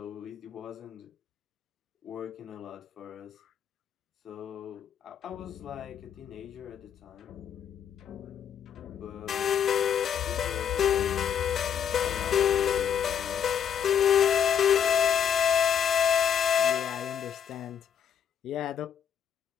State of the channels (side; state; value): right; quieter; 8.5 dB